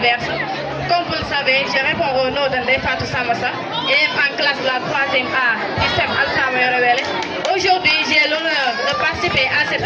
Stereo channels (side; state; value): both; identical; correlation 1.00